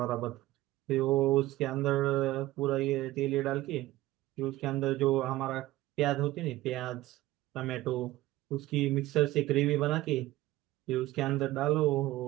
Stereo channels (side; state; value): left; quieter; 16.8 dB